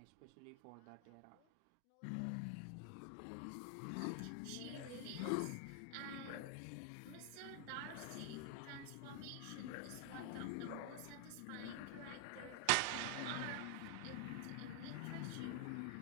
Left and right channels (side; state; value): both; different; correlation 0.00